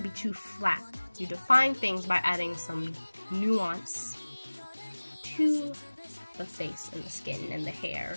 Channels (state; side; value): inverted; both; correlation -1.00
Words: be too flat. You define things by adding some nuance to the face and the skin and the hair